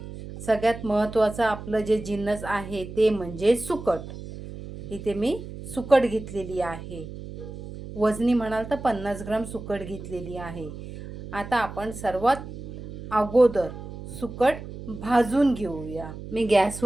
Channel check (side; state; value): right; noise; hum, 11 dB below the sound